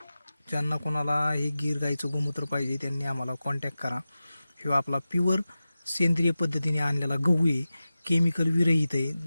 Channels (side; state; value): both; inverted; correlation -0.95